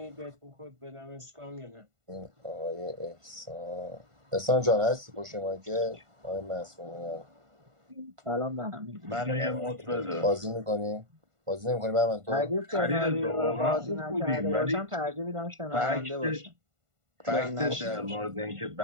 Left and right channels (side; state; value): left; late; 1.5 ms